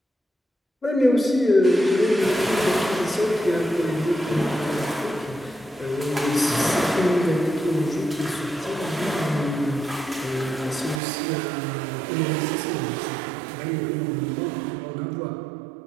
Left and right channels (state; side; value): drops out; left; at 11.0 s